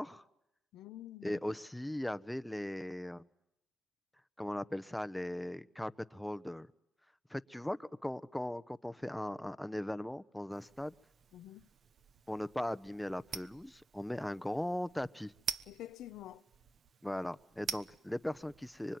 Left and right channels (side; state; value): both; normal; correlation 0.96